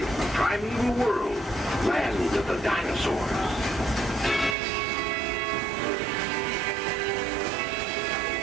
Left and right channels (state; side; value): drops out; left; at 4.5 s